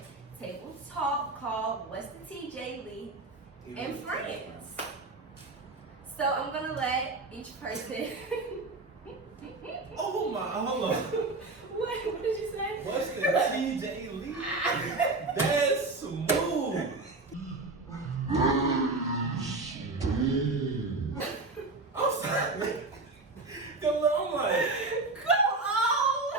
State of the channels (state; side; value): quieter; left; 3.4 dB